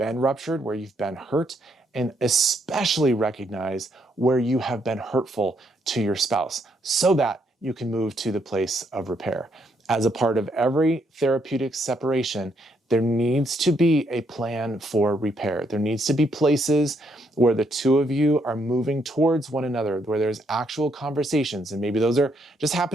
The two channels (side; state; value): both; normal; correlation 0.74